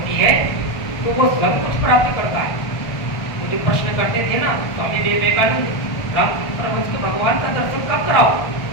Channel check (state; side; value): late; right; 1.4 ms